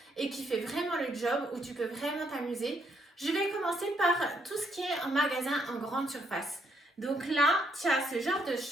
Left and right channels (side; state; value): both; normal; correlation 0.73